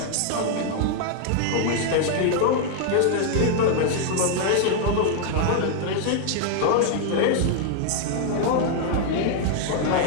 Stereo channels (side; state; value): both; different; correlation 0.00